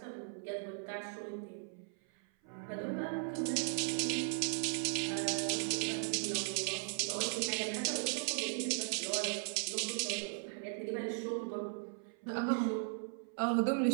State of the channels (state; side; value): silent; left; 53 dB below the other